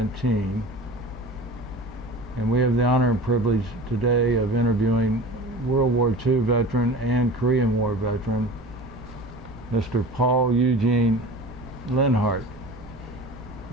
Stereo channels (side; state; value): right; noise; rumble, 20 dB below the sound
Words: and we have the honor and privilege today of interviewing World War II veteran and Korean War veteran Mr. Paul Eugene Lenhart.